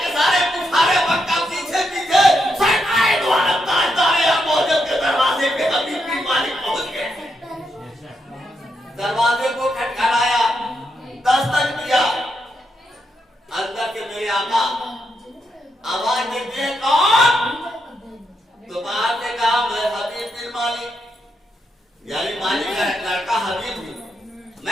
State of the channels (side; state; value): both; normal; correlation 0.82